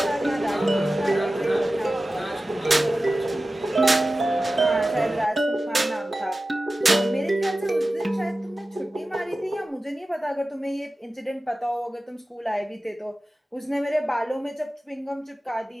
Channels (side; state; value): both; normal; correlation 0.95